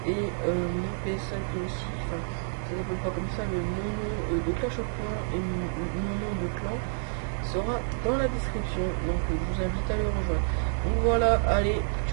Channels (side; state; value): left; silent; 59 dB below the other